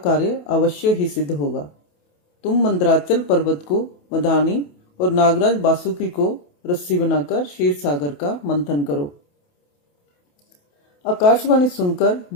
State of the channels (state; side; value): late; right; 28 ms